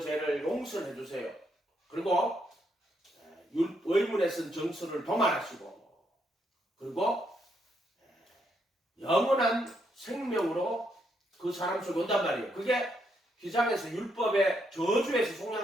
용서해 주세요. 그리고 의문에 쓴 정서를 도말하시고, 그리고 영원한 생명으로 그 사람 속에 온단 말이에요. 그게 휘장에서 율법의 저주에서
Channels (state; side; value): normal; both; correlation 0.76